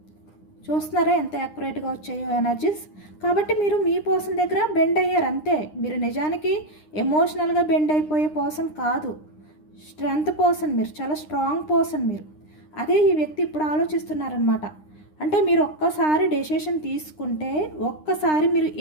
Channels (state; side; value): late; right; 9.8 ms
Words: చూస్తున్నారా ఎంత యాక్యురేట్గా వచ్చాయో ఎనర్జీస్. కాబట్టి మీరు మీ పర్సన్ దగ్గర బెండ్ అయ్యారు అంతే. మీరు నిజానికి ఎమోషనల్గా బెండ్ అయిపోయే పర్సన్ కాదు, స్ట్రెంగ్త్ పర్సన్. మీరు చాలా స్ట్రాంగ్ పర్సన్ మీరు. అదే ఈ వ్యక్తి ఇప్పుడు ఆలోచిస్తున్నారనమాట. అంటే మీరు ఒక్కసారి డెసిషన్ తీసుకుంటే, ఒక్కసారి మీరు